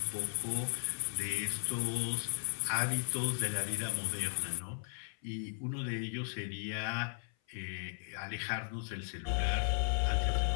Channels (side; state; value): right; silent; 54 dB below the other